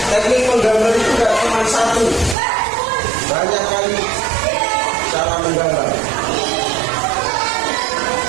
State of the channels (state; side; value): drops out; left; at 2.4 s